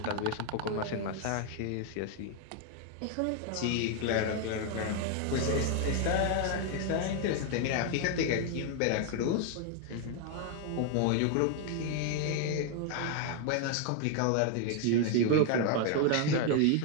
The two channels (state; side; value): different; both; correlation 0.01